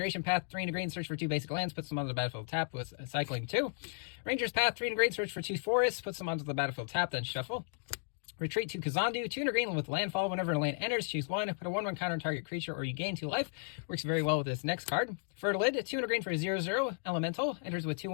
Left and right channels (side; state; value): right; silent; digital silence